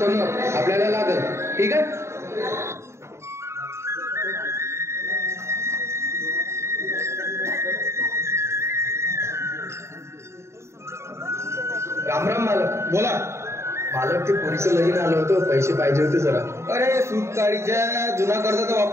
आपल्याला लागल. ठीक आहे? राम राम मालक. बोला. मालक, ते पोरीचं लगीन आलं होतं, पैसे पाहिजे होते जरा. अरे सूतकाळीच्या जुना कर्ज तर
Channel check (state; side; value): late; left; 0.13 ms